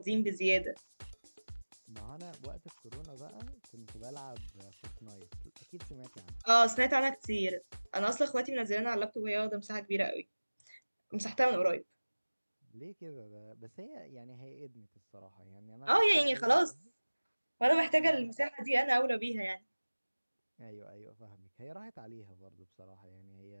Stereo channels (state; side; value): inverted; both; correlation -1.00